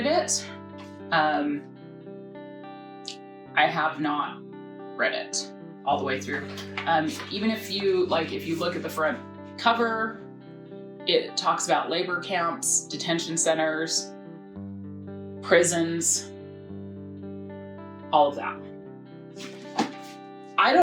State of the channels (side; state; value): both; identical; correlation 1.00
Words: it. I have not read it all the way through. Even if you look at the front cover, it talks about labor camps, detention centers, prisons, all of that. I